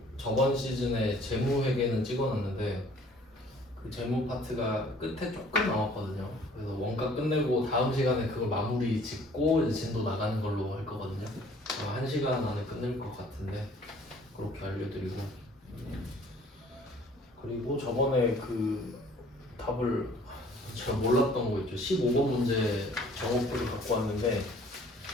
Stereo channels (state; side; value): normal; both; correlation 0.55